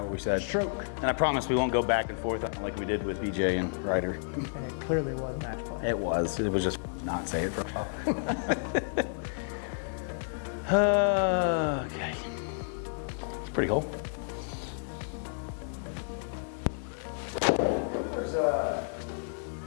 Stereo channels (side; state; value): right; silent; digital silence